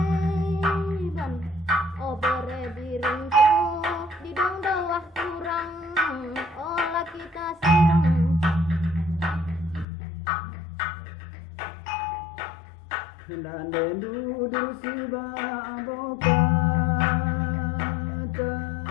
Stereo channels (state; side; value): drops out; right; at 9.9 s